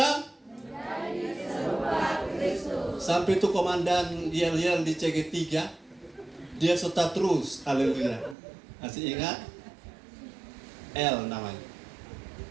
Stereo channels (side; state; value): left; drops out; at 8.3 s